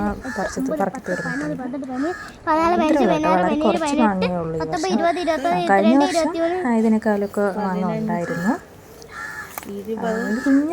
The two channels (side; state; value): both; identical; correlation 1.00